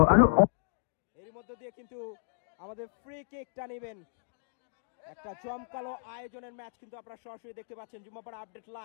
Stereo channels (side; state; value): right; silent; digital silence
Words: আরো এর মধ্যে দিয়ে কিন্তু আমাদের ফ্রি কিকটা নেবেন। একটা জমকালো আয়োজনের ম্যাচ কিন্তু আপনারা সরাসরি দেখতে পাচ্ছেন Jummapara update